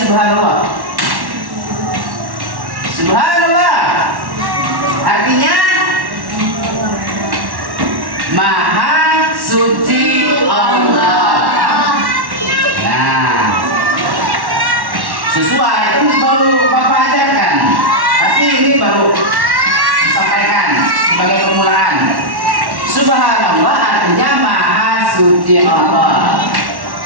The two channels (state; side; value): late; left; 1.1 ms